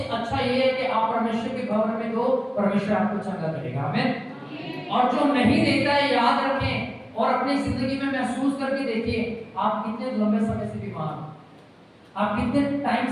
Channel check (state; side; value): identical; both; correlation 1.00